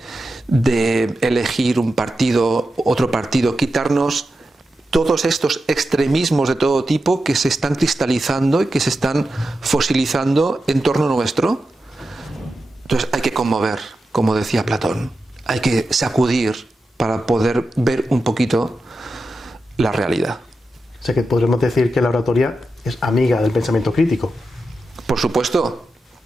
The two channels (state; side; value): normal; both; correlation 0.90